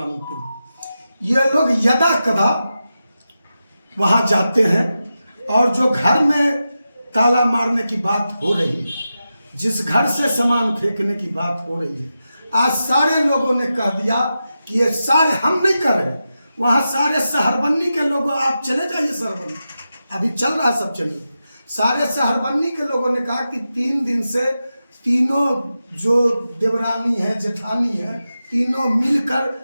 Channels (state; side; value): inverted; both; correlation -0.91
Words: ये लोग यदा कदा वहां जाते हैं, और जो घर में ताला मारने की बात हो रही है, जिस घर से सामान फेंकने की बात हो रही है, आज सारे लोगों ने कह दिया कि ये सारे हम नहीं कर रहे, वहां सारे सहरबन्नी के लोग, आप चले जाइए सहरबन्नी, अभी चल रहा सब चलिए। सारे शहरबन्नी के लोगों ने कहा कि 3 दिन से तीनों जो देवरानी है, जेठानी है, तीनों